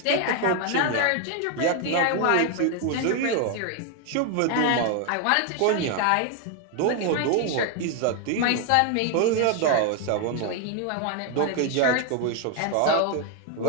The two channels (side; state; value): both; different; correlation 0.00